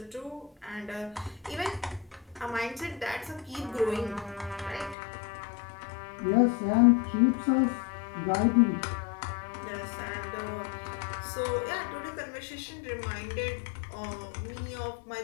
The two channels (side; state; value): right; drops out; at 5.0 s